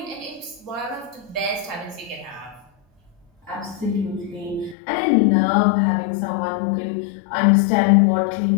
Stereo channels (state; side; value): drops out; right; at 4.8 s